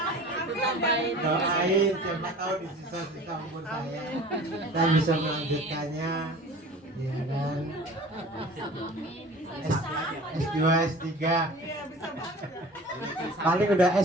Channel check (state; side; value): normal; both; correlation 0.42